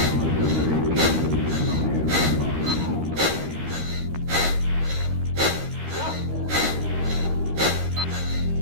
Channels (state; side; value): late; left; 13 ms